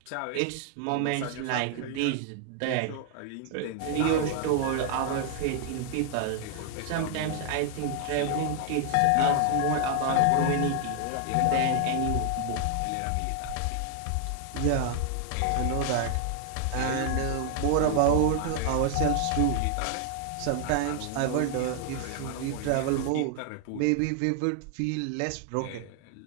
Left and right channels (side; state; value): both; different; correlation 0.00